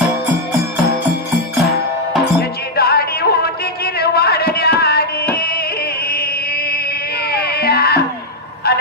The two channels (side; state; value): both; normal; correlation -0.01